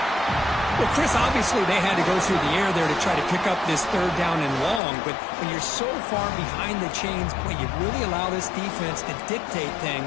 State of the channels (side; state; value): right; drops out; at 4.8 s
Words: Well, Chris, obviously they had to go through the air there to try to pick up this 3rd down and long, but when you're so far behind the chains, boy, you really allow this defense to dictate